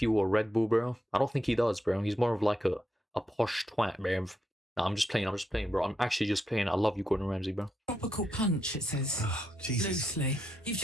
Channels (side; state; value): both; normal; correlation 0.82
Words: or Red Bull, bro? I don't think he does, bro. He's more of like a posh twat, bro. No, I'm just playing, bro. I'm actually just playing. I love you, Gordon Ramsay, bro. Tropical punch, it says. Oh, Jesus. Loosely. You've